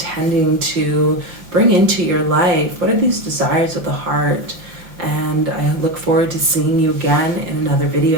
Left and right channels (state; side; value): late; left; 5.7 ms